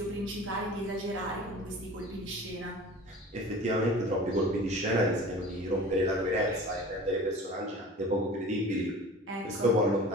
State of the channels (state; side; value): normal; both; correlation 0.40